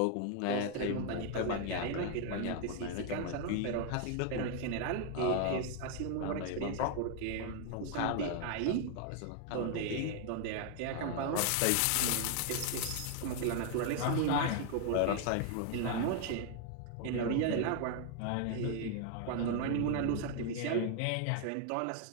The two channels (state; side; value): different; both; correlation 0.00